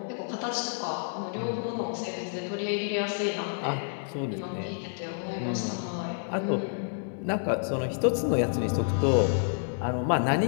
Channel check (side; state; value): right; silent; digital silence